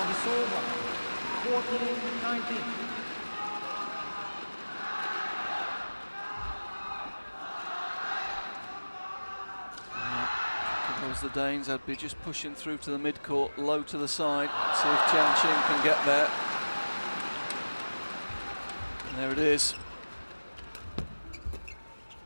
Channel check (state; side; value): inverted; both; correlation -1.00